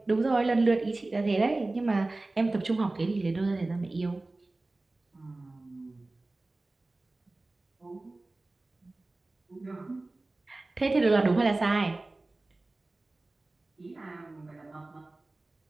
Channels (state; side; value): quieter; left; 3.0 dB